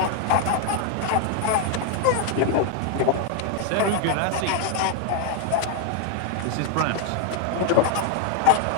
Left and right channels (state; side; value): different; both; correlation 0.00